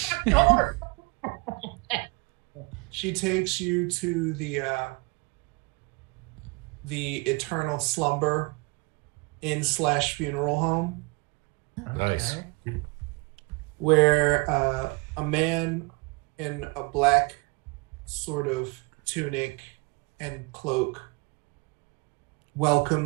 She takes you to the Eternal Slumber Inn/funeral home. Nice. Where a man in a black sort of tunic and cloak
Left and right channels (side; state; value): left; quieter; 28.7 dB